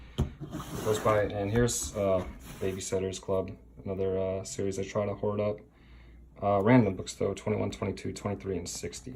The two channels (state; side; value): identical; both; correlation 1.00